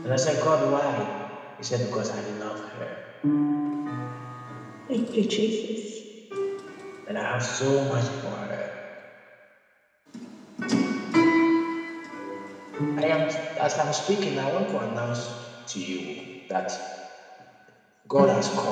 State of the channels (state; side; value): identical; both; correlation 1.00